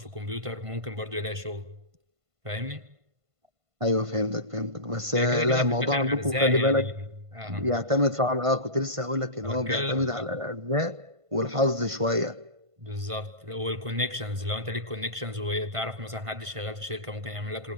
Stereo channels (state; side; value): late; left; 1.5 ms